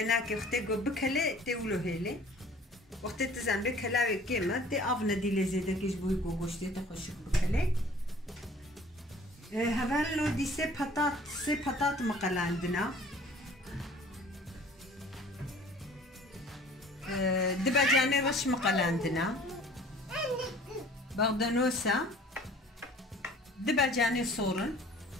كي بكلي تولو هيلي وقت تزن بكلاوي كيما تي أفنا دي لي زيدا كيش بوي قوشتي تخشك بكلي هذا دي سي بطاط مقال عندنا دباجاني رش مقال عندنا بغدانوسا دباجاني صورن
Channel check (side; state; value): both; normal; correlation 0.50